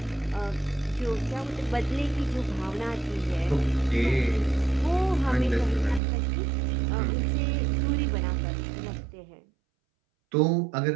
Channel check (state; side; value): drops out; left; at 6.0 s